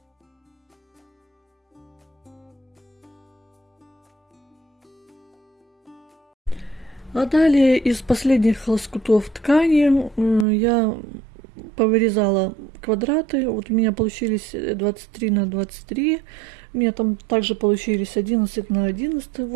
А далее из последних лоскутов ткани я повырезала квадраты. Вот у меня получились 23 на 23. У меня там также получились 11 на 11. В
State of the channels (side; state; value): left; drops out; at 10.5 s